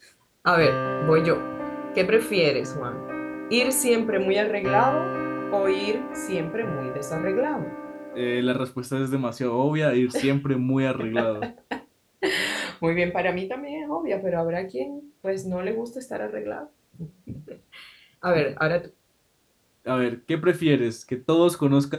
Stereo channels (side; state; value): both; identical; correlation 1.00